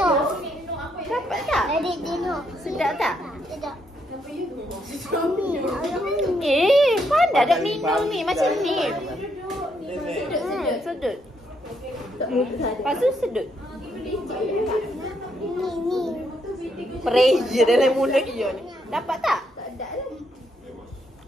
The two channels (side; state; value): both; normal; correlation 0.76